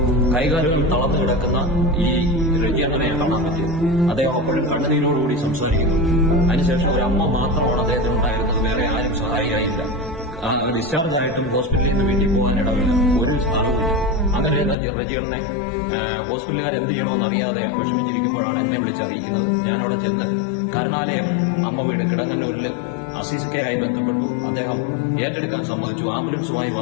കൈകാലുകൾ തളർന്നു കിടക്കുന്ന ഈ രജിയണ്ണനെ കാണാൻ പറ്റി. അദ്ദേഹം അപ്പോഴും കണ്ണുനീരോടുകൂടി സംസാരിക്കുന്നു. അതിനുശേഷം ഒരു അമ്മ മാത്രമാണ് അദ്ദേഹത്തിനുണ്ടായിരുന്നത്. വേറെ ആരും സഹായിയായില്ല. ഡിസ്ചാർജ് ആയിട്ടും ഹോസ്പിറ്റലിൽ നിന്ന് വീട്ടിൽ പോകാനിടവില്ല. ഒരു സ്ഥാനവുമില്ല. അങ്ങനെ റജിയണ്ണനെ ഹോസ്പിറ്റലുകാർ എന്ത് ചെയ്യണമെന്ന് അറിയാതെ വിഷമിച്ചിരിക്കുമ്പോഴാണ് എന്നെ വിളിച്ചറിയിക്കുന്നത്. ഞാൻ അവിടെ ചെന്ന് കരുണാലയം അമ്മ വീട് കിടങ്ങന്നൂരിൽ അസീസിക്കയായി ബന്ധപ്പെട്ടു. അദ്ദേഹം ഏറ്റെടുക്കാൻ സമ്മതിച്ചു. ആംബുലൻസുമായി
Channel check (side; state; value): right; drops out; at 14.8 s